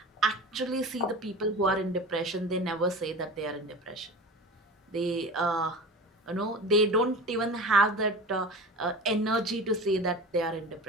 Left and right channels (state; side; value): normal; both; correlation 0.33